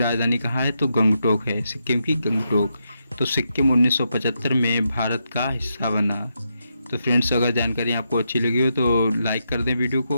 कहाँ है तो गंगटोक है, सिक्किम की गंगटोक। तो सिक्किम 1975 में भारत का हिस्सा बना। तो फ्रेंड्स, अगर जानकारी आपको अच्छी लगी हो तो लाइक कर दें वीडियो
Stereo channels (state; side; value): inverted; both; correlation -0.83